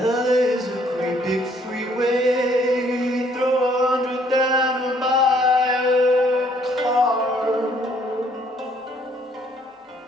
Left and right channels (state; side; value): normal; both; correlation 0.64